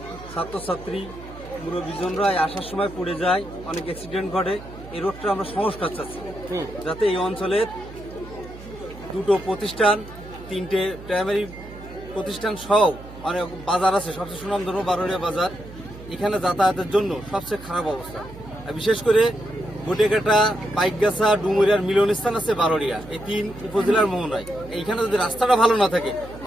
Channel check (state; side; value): noise; right; hum, 16 dB below the sound